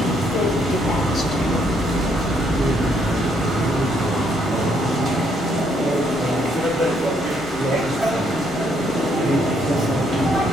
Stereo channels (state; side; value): normal; both; correlation 0.71